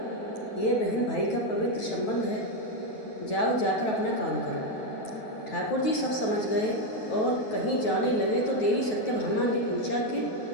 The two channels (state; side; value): late; right; 9.2 ms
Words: ये बहन भाई का पवित्र संबंध है। जाओ, जाकर अपना काम करो। ठाकुर जी सब समझ गए और कहीं जाने लगे तो देवी सत्यभामा ने पूछा कि